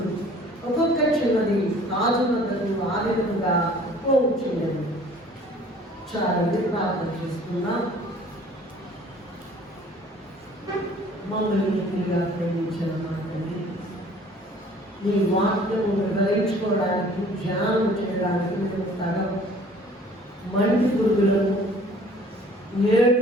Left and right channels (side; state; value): both; normal; correlation 0.52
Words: ఒక్కొక్క చిన్నది రాజు వద్దకు ఆ విధంగా పోవచ్చున్నది. చాలండి, ప్రార్థన చేసుకున్నాం. మమ్మల్ని తిరిగా ప్రేమించిన మాటని నీ వాక్యము గ్రహించుకోవడానికి, ధ్యానం చేయడానికి మేము తగం. మంటి పురుగులను